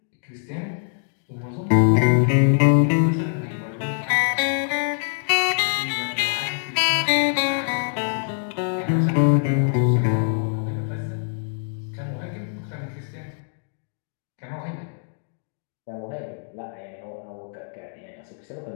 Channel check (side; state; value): right; silent; digital silence